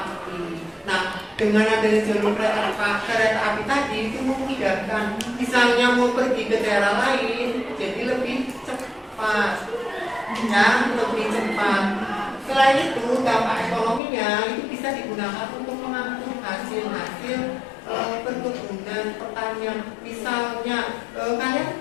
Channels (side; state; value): right; drops out; at 14.0 s